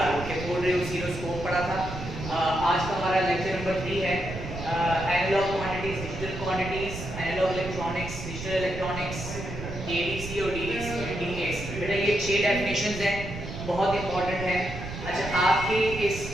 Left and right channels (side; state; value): right; noise; rumble, 8 dB below the sound